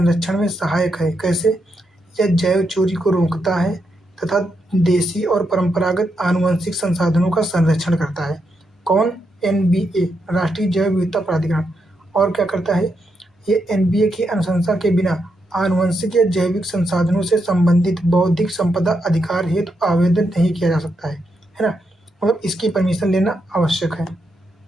में सहायक है। कैसे? यह जैव चोरी को रोकता है तथा देसी और परंपरागत आनुवंशिक संसाधनों का संरक्षण करता है। कौन? एनबीए, राष्ट्रीय जैव विविधता प्राधिकरण। और क्या करता है? ये एनबीए की अनुशंसा के बिना आनुवंशिक या जैविक संसाधनों से संबंधित बौद्धिक संपदा अधिकार हेतु आवेदन नहीं किया जा सकता है ना, मतलब इसकी परमिशन लेना आवश्यक है।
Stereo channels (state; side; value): normal; both; correlation 0.82